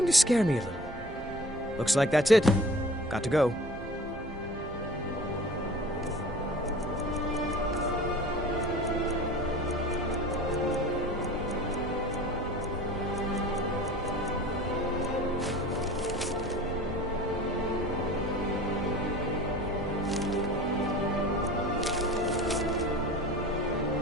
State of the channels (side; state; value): right; noise; hum, 23 dB below the sound